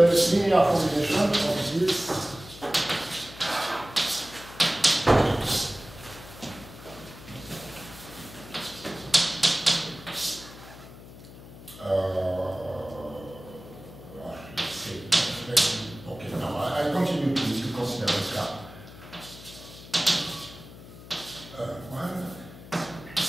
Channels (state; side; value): noise; left; hum, 17 dB below the sound